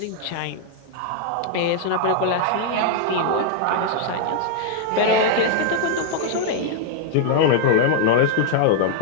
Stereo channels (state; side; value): different; both; correlation -0.01